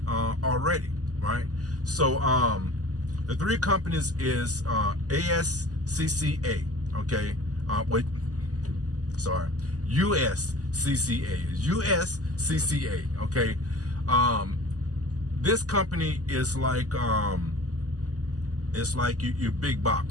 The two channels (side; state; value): left; late; 0.67 ms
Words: already, right? So the 3 companies is ASCCA, okay? USCCA, okay? This company is like it's like your big